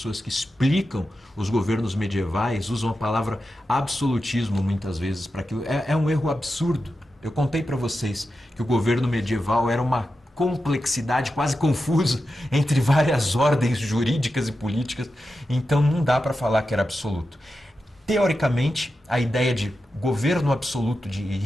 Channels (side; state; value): both; normal; correlation 0.90